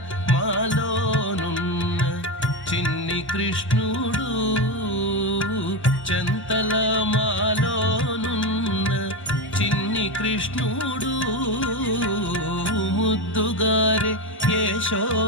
మాలోనున్న చిన్ని కృష్ణుడు చంతల మాలోనున్న చిన్ని కృష్ణుడు ముద్దుగారే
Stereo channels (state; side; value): late; right; 1.1 ms